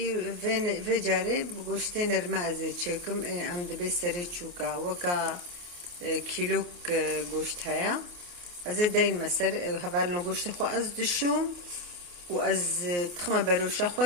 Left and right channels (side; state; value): left; late; 28 ms